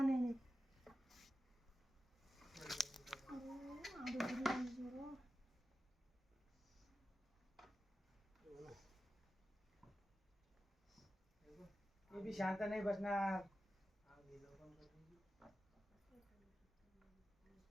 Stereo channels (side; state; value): both; normal; correlation 0.92